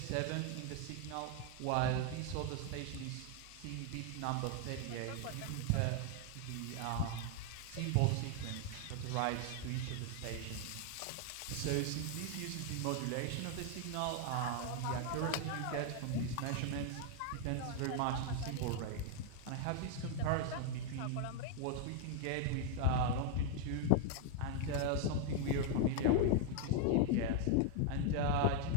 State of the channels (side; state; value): both; different; correlation 0.00